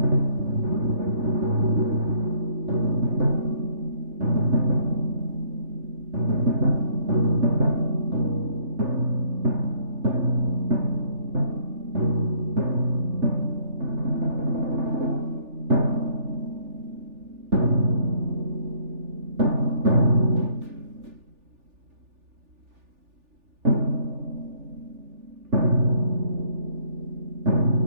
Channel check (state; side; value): late; left; 3.4 ms